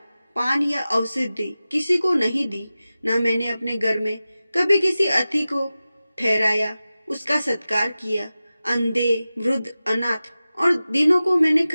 पान या औषधि किसी को नहीं दी। न मैंने अपने घर में कभी किसी अतिथि को ठहराया, उसका सत्कार किया। अंधे वृद्ध अनाथ और दीनों को मैंने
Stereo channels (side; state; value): both; inverted; correlation -0.95